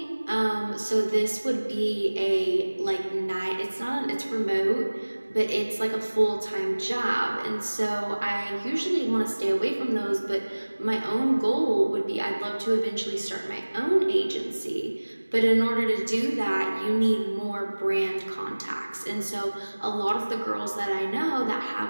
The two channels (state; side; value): inverted; both; correlation -1.00